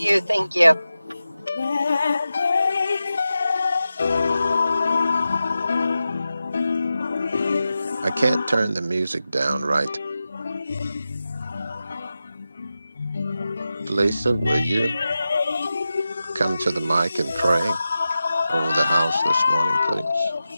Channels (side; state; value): both; inverted; correlation -0.93